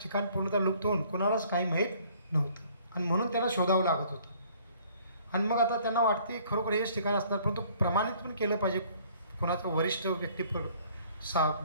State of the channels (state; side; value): inverted; both; correlation -0.58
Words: पूर्णतः लुप्त होऊन कोणालाच काही माहीत नव्हतं आणि म्हणून त्यांना शोधावं लागत होतं. आणि मग आता त्यांना वाटते खरोखर हेच ठिकाण असणार, परंतु प्रमाणित पण केलं पाहिजे कोणाचं वरिष्ठ व्यक्ती